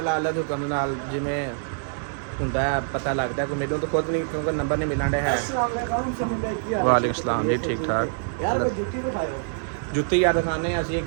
ਅੱਲਾ ਦੇ ਹੁਕਮ ਨਾਲ ਜਿਵੇਂ ਹੁੰਦਾ ਪਤਾ ਲੱਗਦਾ ਕੋਈ ਮੈਨੂੰ ਤਾਂ ਖੁਦ ਨਹੀਂ ਕਿਉਂਕਿ ਨੰਬਰ ਨਹੀਂ ਮਿਲਣ ਰਿਹਾ ਹੈ ਵਾਲੇਕੁਮ ਸਲਾਮ ਜੀ ਠੀਕ ਠਾਕ ਯਾਰ ਜੁੱਤੀ ਦਿਖਾਓ ਜੁੱਤੀ ਯਾਰ ਦਿਖਾਣੇ ਅਸੀਂ ਇੱਕ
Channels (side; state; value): left; silent; 62 dB below the other